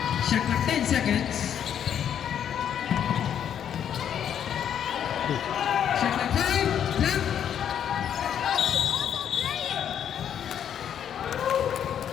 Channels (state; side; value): quieter; right; 9.2 dB